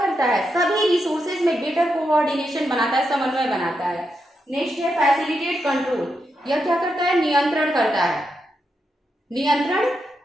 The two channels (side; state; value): both; normal; correlation 0.84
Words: है, सभी रिसोर्सेज में बेटर कोऑर्डिनेशन बनाता है, समन्वय बनाता है। नेक्स्ट है फैसिलिटेट कंट्रोल। यह क्या करता है, नियंत्रण करता है, नियंत्रण